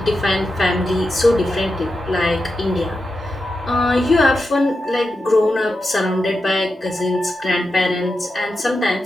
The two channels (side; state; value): both; normal; correlation 0.89